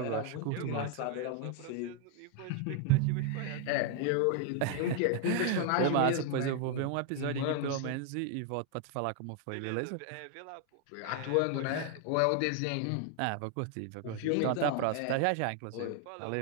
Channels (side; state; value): both; different; correlation 0.00